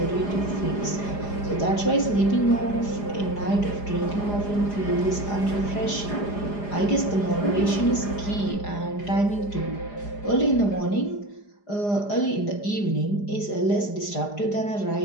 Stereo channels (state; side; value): late; right; 4.9 ms